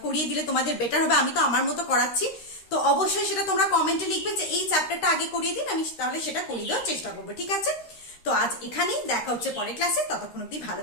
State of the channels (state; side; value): late; right; 13 ms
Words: করিয়ে দিলে তোমাদের বেটার হবে, আমি তো আমার মতো করাচ্ছি, তো অবশ্যই সেটা তোমরা কমেন্টে লিখবে যে এই চ্যাপ্টারটা আগে করিয়ে দিন, আমি তাহলে সেটা করিয়ে দেওয়ার চেষ্টা করবো, ঠিক আছে। তো আজ এখানেই দেখা হচ্ছে পরের ক্লাসে, ততক্ষণ অব্দি ভালো